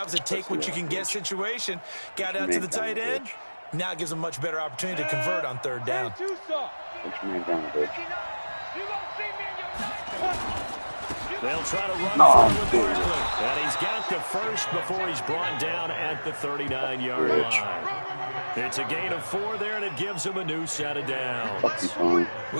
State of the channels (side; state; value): both; inverted; correlation -1.00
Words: was a take-what-you-can-get situation. Got out to the tight end. Now it gives them a much better opportunity to convert on 3rd down. They'll try to run forward with Barkley. And he's got the first before he's brought down at the 39-yard line. It's a gain of 4 there, and it gives him a new set of downs.